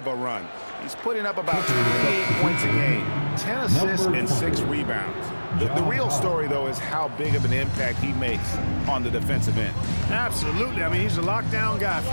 a run. He's putting up about 28 points a game, 10 assists, and 6 rebounds. The real story, though, is how big of an impact he makes on the defensive end. Absolutely. I mean, he's a lockdown guy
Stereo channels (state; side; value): inverted; both; correlation -1.00